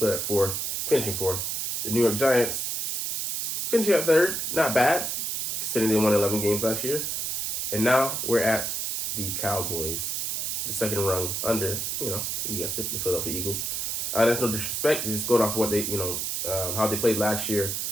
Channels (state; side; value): noise; right; hiss, 1 dB below the sound